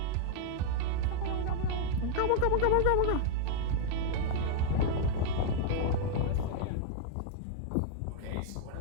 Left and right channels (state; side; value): different; both; correlation 0.00